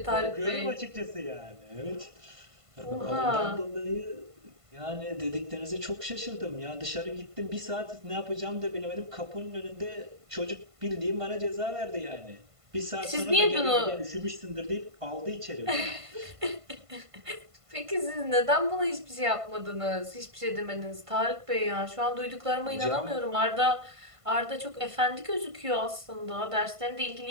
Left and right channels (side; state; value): left; late; 1.5 ms